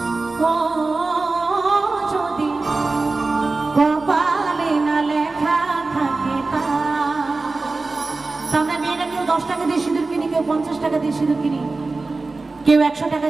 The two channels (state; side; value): quieter; left; 3.6 dB